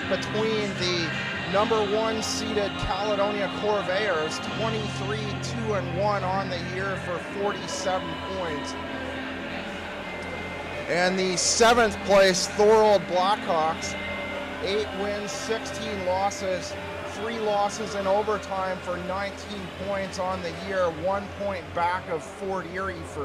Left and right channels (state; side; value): identical; both; correlation 1.00